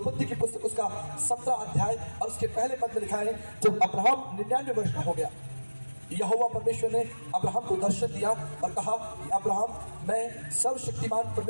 की पुस्तक उसका 17 अध्याय और उसके पहले पद में लिखा है, जब अब्राहम 99 वर्ष का हो गया, यहोवा परमेश्वर ने अब्राहम को दर्शन दिया और कहा कि अब्राहम, मैं सर्वशक्तिमान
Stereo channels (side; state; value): both; inverted; correlation -1.00